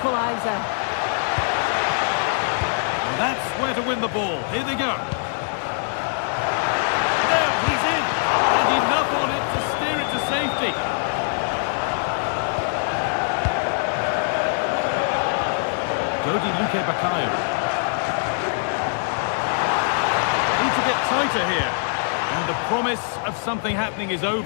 And that's where to win the ball. Here they go. Now he's in. And enough on it to steer it to safety. Dodi Luque Baccaio. Need to get tighter here. And the promise of something happening is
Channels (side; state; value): right; silent; 56 dB below the other